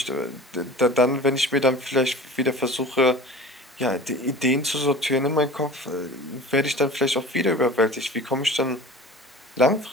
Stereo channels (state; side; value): normal; both; correlation 0.39